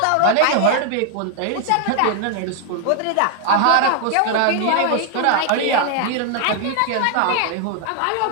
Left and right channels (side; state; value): both; different; correlation 0.00